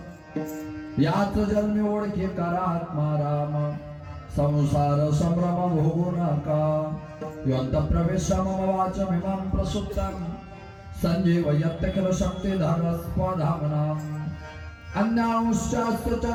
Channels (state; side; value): identical; both; correlation 1.00